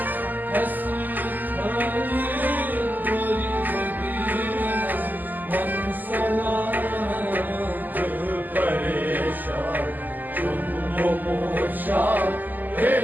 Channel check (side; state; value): left; late; 0.085 ms